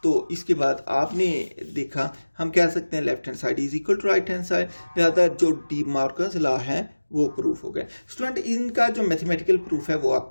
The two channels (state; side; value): inverted; both; correlation -1.00